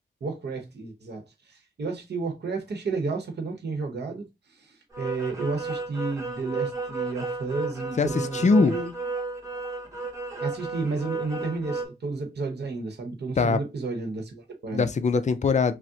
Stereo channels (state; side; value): normal; both; correlation 0.61